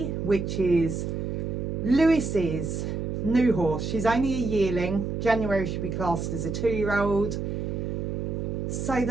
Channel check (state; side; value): noise; right; hum, 3 dB below the sound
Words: which is Lewis's new horse. She's only a yearling. January should be classed as a 2-year-old. So